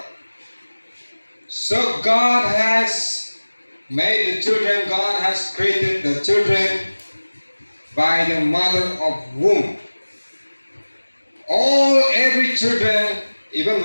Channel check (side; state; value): both; inverted; correlation -1.00